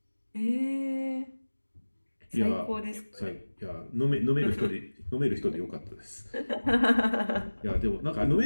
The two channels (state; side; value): inverted; both; correlation -1.00